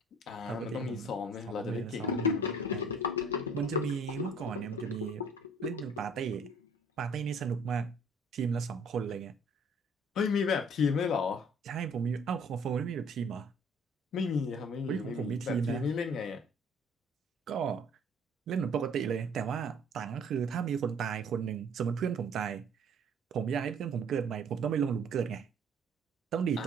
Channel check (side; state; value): both; normal; correlation 0.55